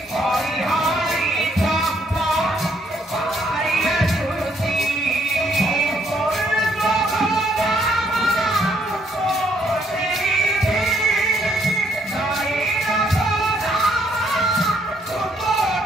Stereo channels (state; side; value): normal; both; correlation 0.69